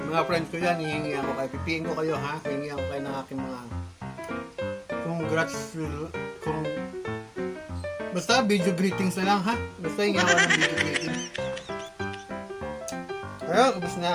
friends ko yan, hihingi ako kayo. Pipiin ko kayo ha. Hihingi ako kayo ng aking mga congrats. Basta video greetings na lang ha. Basta yung ako ng video greetings. Ayun, ubos na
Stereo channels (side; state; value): both; identical; correlation 1.00